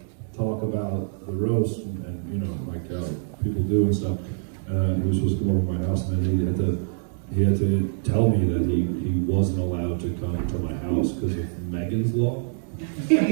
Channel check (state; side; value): silent; left; 62 dB below the other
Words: talk about the roast and you know like how people do and stuff. He was supposed to come over to my house, and then he had to tell me that he wasn't allowed to come to my house because of Megan's Law.